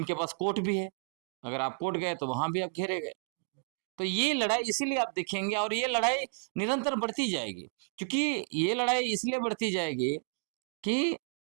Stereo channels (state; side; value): silent; left; digital silence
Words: पास कोर्ट भी है, अगर आप कोर्ट गए तो वहां भी आप घेरे गए। तो ये लड़ाई इसीलिए आप देखेंगे, और ये लड़ाई निरंतर बढ़ती जाएगी, क्योंकि ये लड़ाई इसलिए बढ़ती जाएगी कि